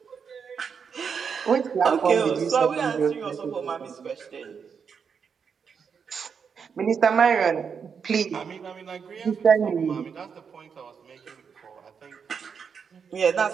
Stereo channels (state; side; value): quieter; left; 6.4 dB